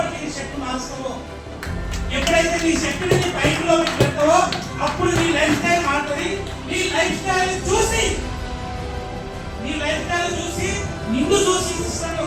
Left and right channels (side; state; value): both; identical; correlation 1.00